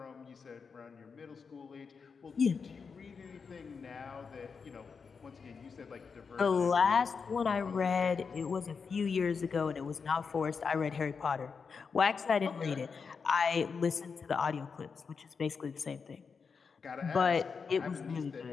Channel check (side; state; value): right; quieter; 5.5 dB